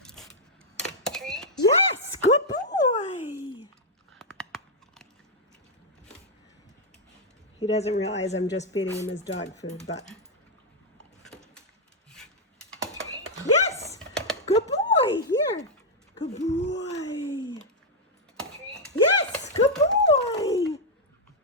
Treat. Yes, good boy. He doesn't realize I'm just feeding him his dog food, but. Yes, good boy. Here, good boy. Treat. Yes, good boy.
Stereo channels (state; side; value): normal; both; correlation -0.02